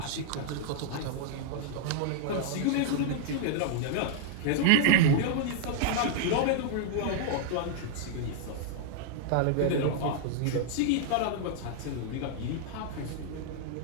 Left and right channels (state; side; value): different; both; correlation -0.01